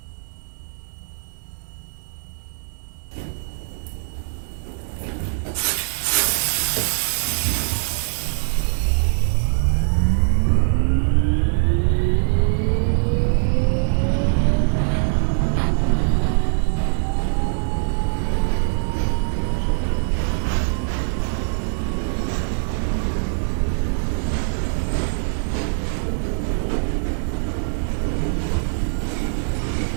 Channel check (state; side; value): silent; left; 61 dB below the other